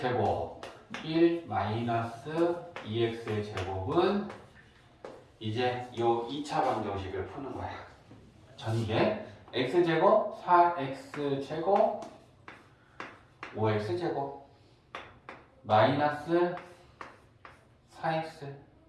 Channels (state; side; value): identical; both; correlation 1.00